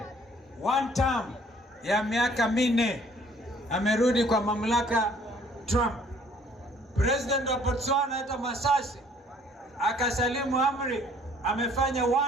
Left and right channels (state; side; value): normal; both; correlation 0.59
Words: one term ya miaka 4 amerudi kwa mamlaka Trump. President wa Botswana hata Masasi akasalimu amri, amefanya